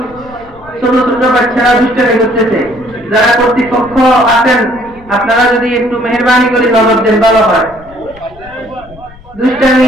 ছোট ছোট বাচ্চারা দুষ্টামি করতেছে। যারা কর্তৃপক্ষ আছেন আপনারা যদি একটু মেহেরবানি করে নজর দেন ভালো হয়।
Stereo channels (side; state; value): left; noise; rumble, 23 dB below the sound